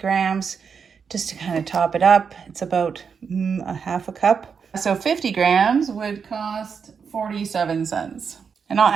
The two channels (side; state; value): left; quieter; 6.2 dB